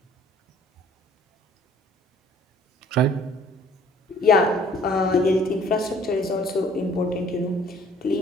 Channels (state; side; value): normal; both; correlation 0.56